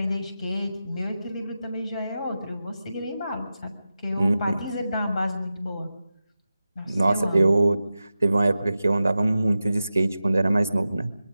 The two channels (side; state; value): both; inverted; correlation -0.92